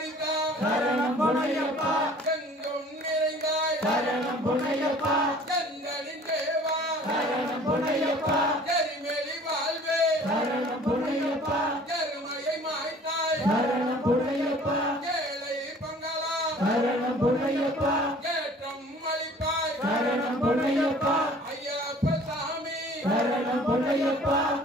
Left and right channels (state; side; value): normal; both; correlation 0.50